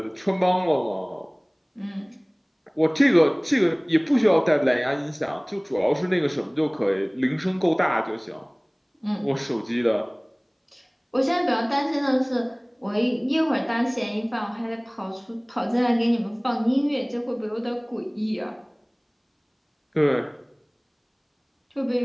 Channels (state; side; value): identical; both; correlation 1.00